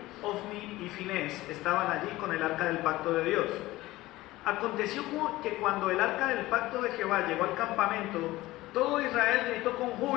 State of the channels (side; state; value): right; quieter; 17.9 dB